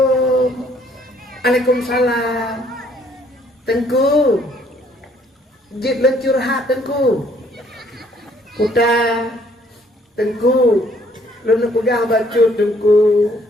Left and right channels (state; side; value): normal; both; correlation 0.63